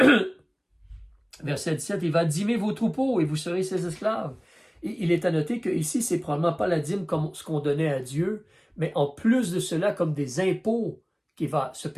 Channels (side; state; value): both; identical; correlation 1.00